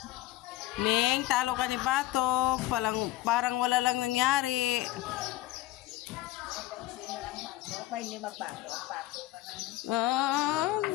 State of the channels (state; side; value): quieter; right; 16.1 dB